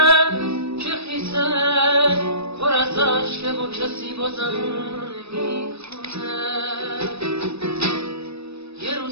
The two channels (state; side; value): late; left; 0.78 ms